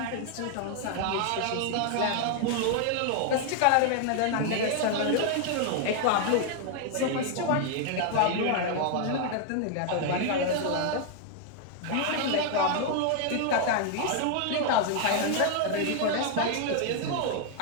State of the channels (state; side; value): different; both; correlation 0.00